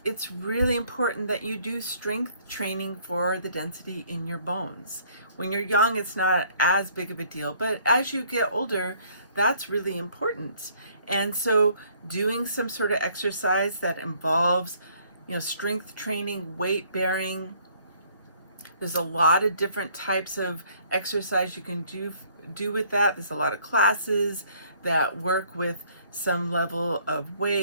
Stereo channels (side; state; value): both; inverted; correlation -0.61